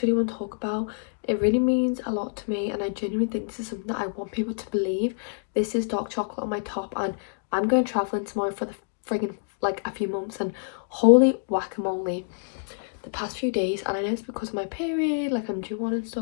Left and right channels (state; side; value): silent; right; digital silence